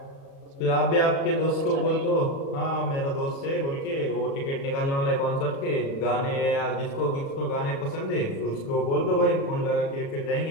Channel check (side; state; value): right; late; 36 ms